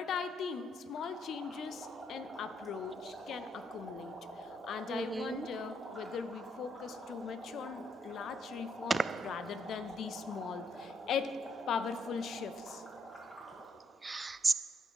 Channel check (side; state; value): both; normal; correlation 0.75